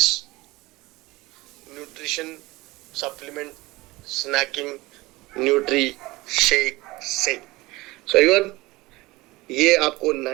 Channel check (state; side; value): quieter; left; 21.0 dB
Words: nutrition supplement snacking Nutri shake से। सो एवरीवन, ये आपको